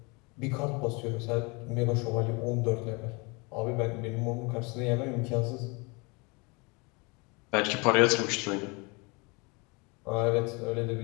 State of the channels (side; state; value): right; quieter; 28.7 dB